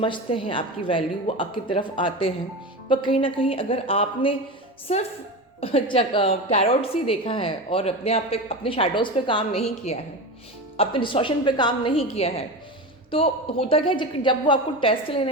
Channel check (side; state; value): both; normal; correlation 0.24